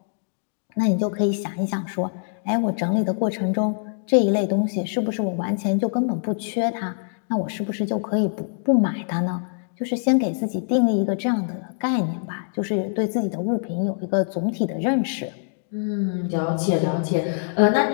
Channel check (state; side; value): silent; right; digital silence